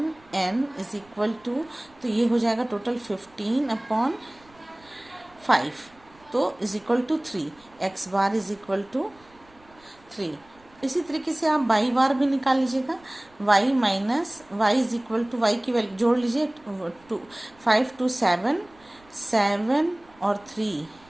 n is equal to, तो ये हो जाएगा टोटल 15/5, तो is equal to 3, x bar is equal to 3। इसी तरीके से आप वाई बार भी निकाल लीजिएगा, y minus y is equal to, y की वैल्यू जोड़ लीजिए, 5 to 7, 7 और 3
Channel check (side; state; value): right; noise; rumble, 28 dB below the sound